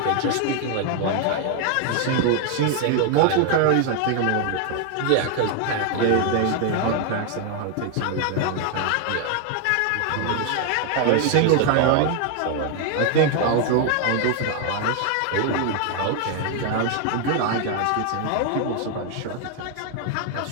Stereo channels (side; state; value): both; different; correlation 0.01